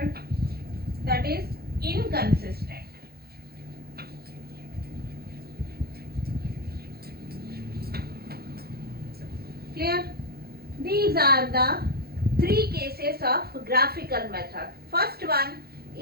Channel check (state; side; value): late; left; 0.45 ms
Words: that is inconsistent. Clear? These are the three cases of graphical method. First one,